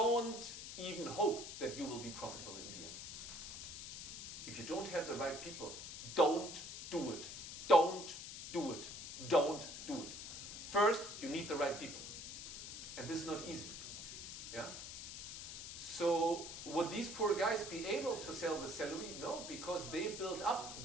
even hope that you will be profitable in the end. If you don't have the right people, don't do it. Don't do it. Don't do it. First, you need the right people. And this is not easy. Yeah? So would these poor guys be able to sell the salary? No, because they built up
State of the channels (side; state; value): left; noise; hiss, 8 dB below the sound